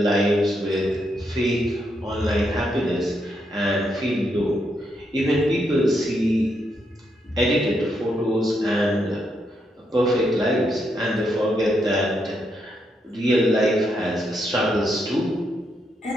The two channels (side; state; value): both; normal; correlation 0.79